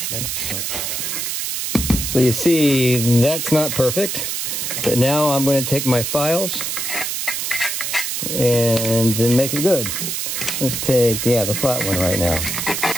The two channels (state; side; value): noise; right; hiss, 2 dB below the sound